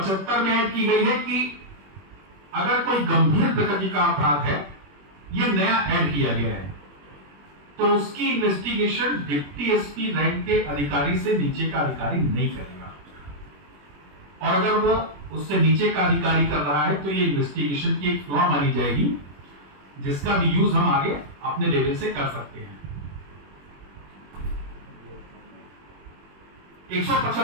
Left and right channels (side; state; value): left; late; 21 ms